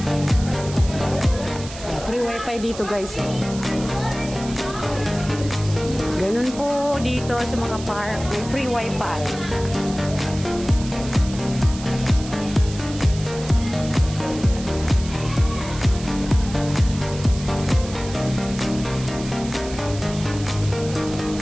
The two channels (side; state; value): right; noise; hiss, 14 dB below the sound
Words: Free wifi dito guys. Ganun po dito sa mga park. May free wifi.